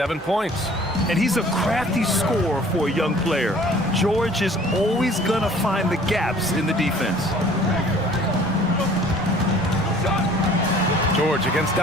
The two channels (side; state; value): both; normal; correlation 0.52